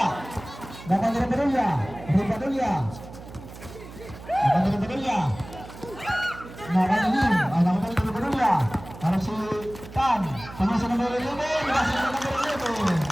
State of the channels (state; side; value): noise; right; hum, 15 dB below the sound